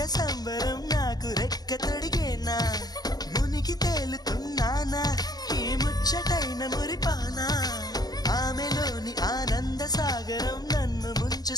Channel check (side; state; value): right; late; 0.19 ms